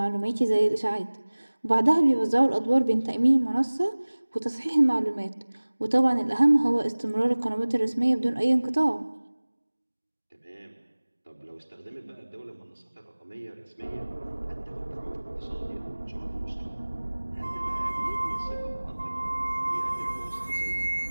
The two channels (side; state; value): both; inverted; correlation -1.00